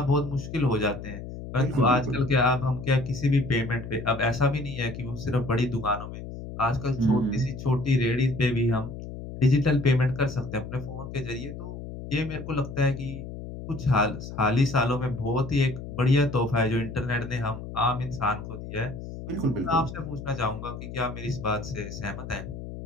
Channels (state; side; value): noise; left; hum, 10 dB below the sound